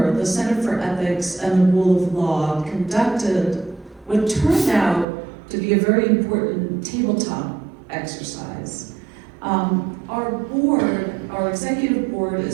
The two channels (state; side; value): drops out; left; at 5.1 s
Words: the Center for Ethics and the Rule of Law conducted what turned out to be a very important tabletop exercise. Our executive board